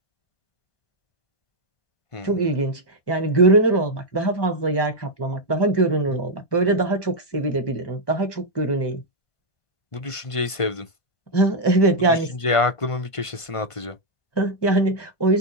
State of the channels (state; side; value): late; right; 1.5 ms